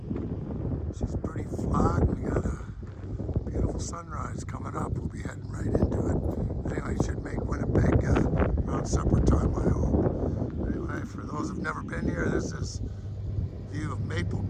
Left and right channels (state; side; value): identical; both; correlation 1.00